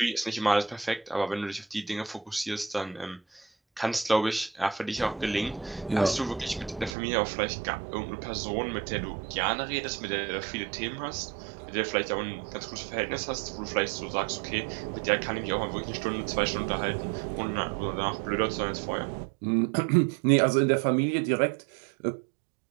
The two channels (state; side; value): drops out; left; at 7.0 s